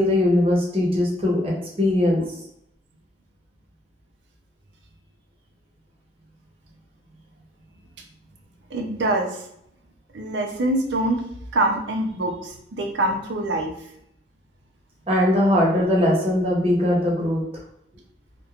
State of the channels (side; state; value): both; normal; correlation 0.55